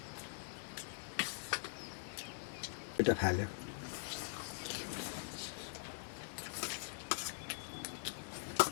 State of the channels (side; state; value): right; silent; digital silence